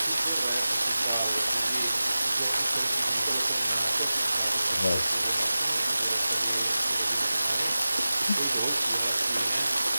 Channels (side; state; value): both; inverted; correlation -0.96